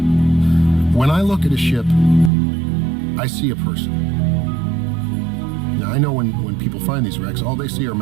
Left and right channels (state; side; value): drops out; left; at 2.3 s